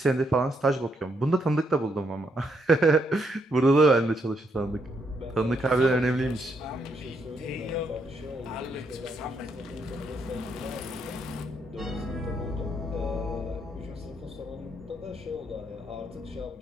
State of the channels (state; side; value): normal; both; correlation 0.76